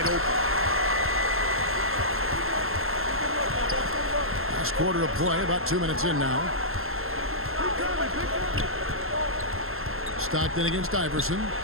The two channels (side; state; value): left; late; 0.61 ms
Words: open. Last quarter of play, about 2 minutes in now. Stockton against Iverson.